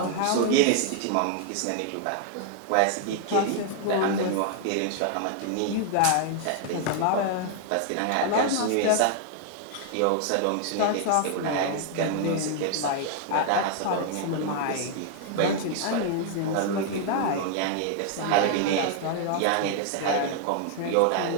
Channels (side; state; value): both; different; correlation 0.00